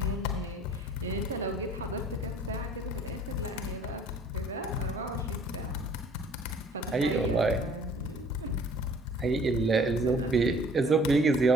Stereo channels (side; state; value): both; normal; correlation 0.53